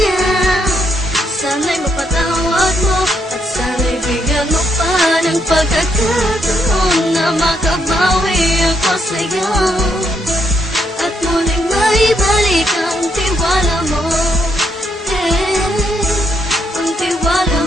Sana'y mapatawad mo at sana'y bigyan mo pa ng pagkakataon na makabawi ako sa'yo at muling maibalik ang tiwala mo. Ang tiwala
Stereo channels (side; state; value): both; normal; correlation 0.76